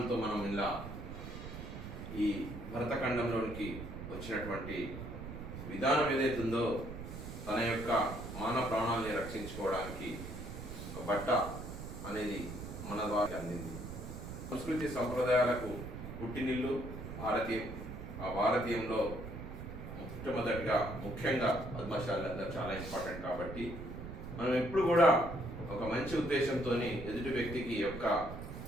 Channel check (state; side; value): noise; right; rumble, 9 dB below the sound